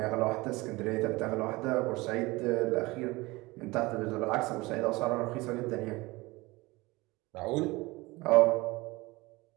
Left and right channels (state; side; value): quieter; left; 22.2 dB